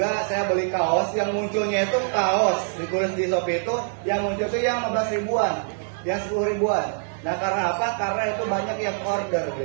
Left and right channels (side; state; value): left; silent; 58 dB below the other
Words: saya beli kaos yang munculnya itu kaos ditulis di Shopee itu yang muncul itu yang 15 ribuan, yang 10 ribuan. Nah, karena apa? Karena itu banyak yang order